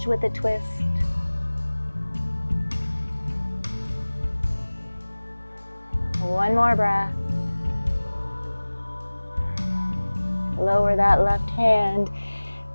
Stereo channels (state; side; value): inverted; both; correlation -1.00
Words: with a twist. One more breath. Lower that left hand.